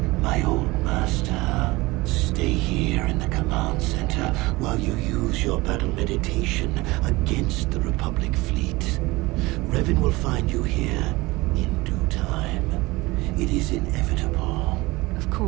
my old master. Stay here in the command center while you use your battle meditation against the Republic fleet. Revan will find you here in due time. It is inevitable. Of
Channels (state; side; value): quieter; left; 21.6 dB